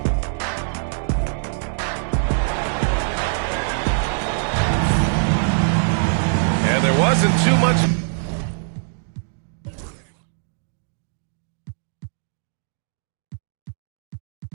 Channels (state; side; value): silent; left; digital silence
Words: And there wasn't too much...